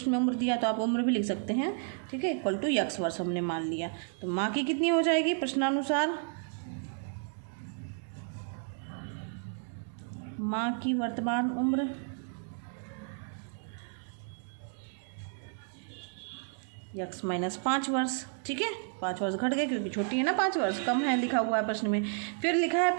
में उम्र दिया तो आप उम्र भी लिख सकते हैं। ठीक है, इक्वल टू x वर्ष हमने मान लिया। तो माँ की कितनी हो जाएगी प्रश्नानुसार, माँ की वर्तमान उम्र x माइनस 5 वर्ष। ठीक है, 5 वर्ष घट गए क्योंकि छोटी है ना, 5 वर्ष कम है लिखा हुआ है प्रश्न में। फिर लिखा है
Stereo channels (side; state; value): left; silent; 56 dB below the other